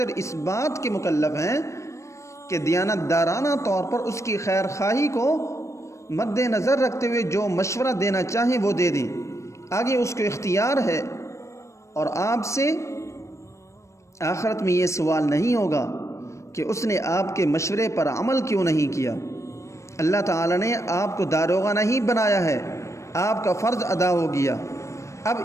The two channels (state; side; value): late; right; 0.14 ms